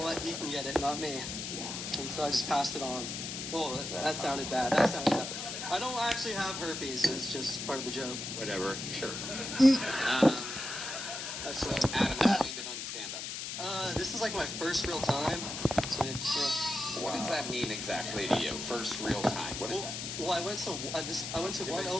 what? He can get it, not me. Yeah. And so I just passed it on. Well, that sounded bad. That sounded bad. I don't actually have herpes. It's just part of the joke. Whatever. Sure. That's right. Adam, how long you been on stand-up? This is like my first real time. So, yeah. What does that mean exactly to you? First real time. What is that? Well, I went to one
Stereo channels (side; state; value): left; noise; hiss, 6 dB below the sound